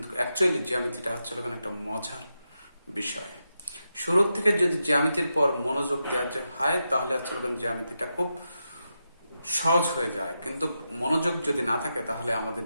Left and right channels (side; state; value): both; inverted; correlation -0.87